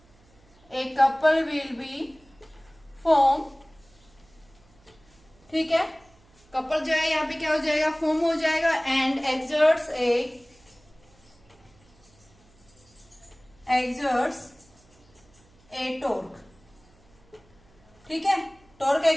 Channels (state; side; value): noise; right; hum, 30 dB below the sound